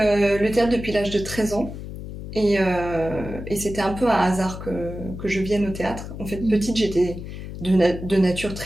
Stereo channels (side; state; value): left; noise; hum, 10 dB below the sound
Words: théâtre depuis l'âge de 13 ans. Et c'était un peu un hasard que je vienne au théâtre. En fait, petite, j'étais de nature